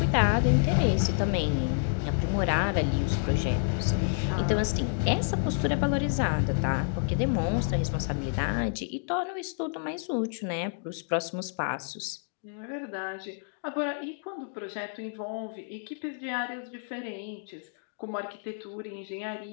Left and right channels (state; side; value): silent; right; digital silence